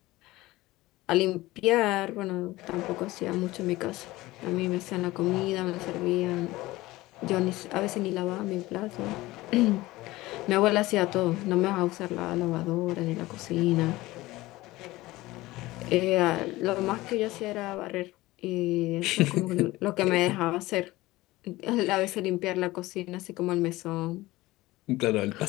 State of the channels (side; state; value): right; quieter; 18.8 dB